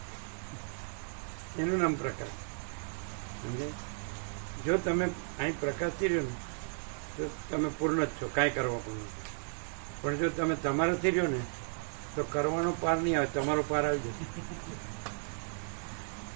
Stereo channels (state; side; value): silent; left; 55 dB below the other